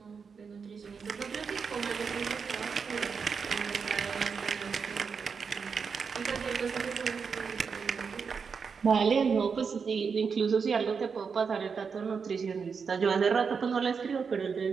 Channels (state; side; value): quieter; left; 5.8 dB